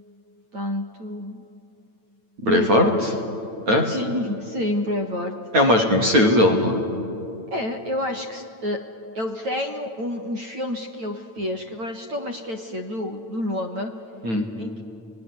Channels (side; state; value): left; late; 9.0 ms